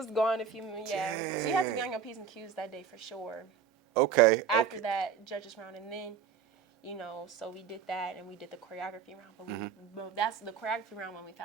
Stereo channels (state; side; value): quieter; left; 7.2 dB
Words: gone if you, So you had to be on your P's and Q's that day for sure. Okay. After that judges round, and then, you know, so we did that and we did the choreography round, but that's the choreography round when we